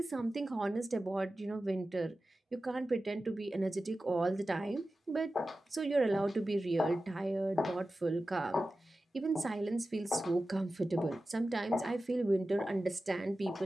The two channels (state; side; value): normal; both; correlation 0.94